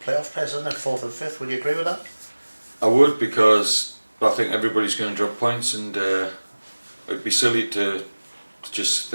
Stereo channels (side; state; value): both; inverted; correlation -1.00